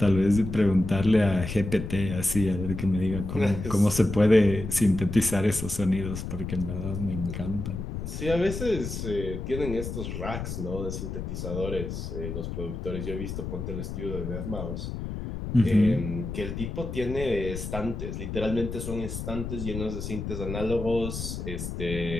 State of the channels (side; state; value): left; noise; rumble, 6 dB below the sound